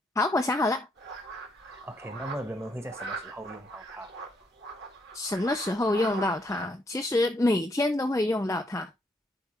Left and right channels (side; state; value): both; normal; correlation 0.73